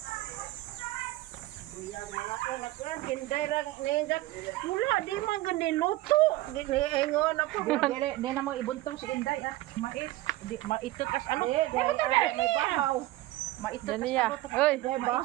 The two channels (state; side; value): quieter; left; 17.5 dB